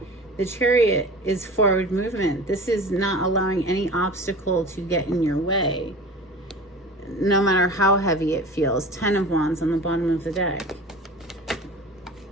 the Chariot is forward movement. This is not allowing any obstacle to get in your way, no matter how heavy it feels. 10 of Wands on the bottom of the deck.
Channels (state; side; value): normal; both; correlation 0.37